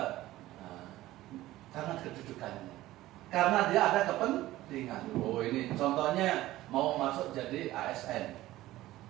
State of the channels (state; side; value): quieter; left; 16.1 dB